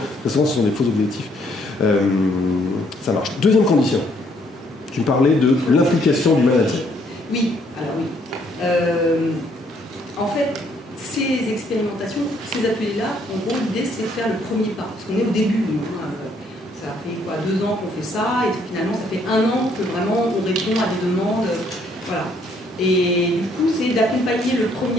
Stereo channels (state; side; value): normal; both; correlation 0.67